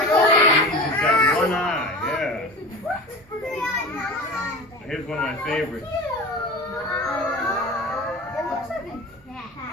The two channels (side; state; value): both; normal; correlation 0.33